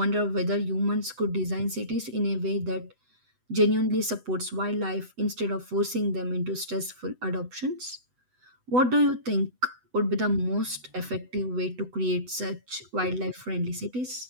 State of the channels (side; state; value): left; late; 8.0 ms